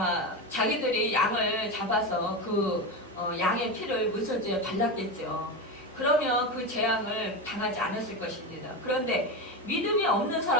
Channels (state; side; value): normal; both; correlation 0.18